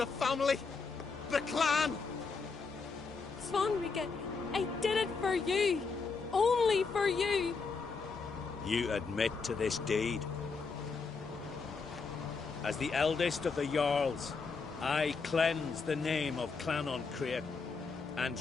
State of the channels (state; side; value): quieter; right; 4.7 dB